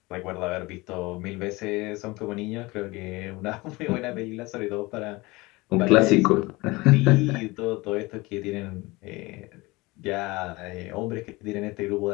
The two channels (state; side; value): quieter; right; 22.6 dB